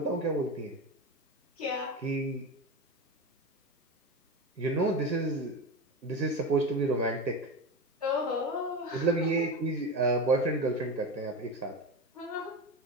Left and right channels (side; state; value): both; normal; correlation 0.22